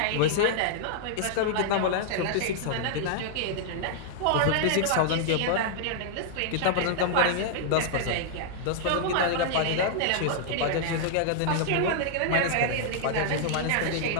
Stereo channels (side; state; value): both; different; correlation -0.01